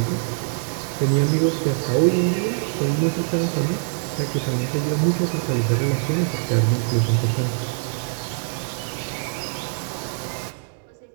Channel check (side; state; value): left; silent; digital silence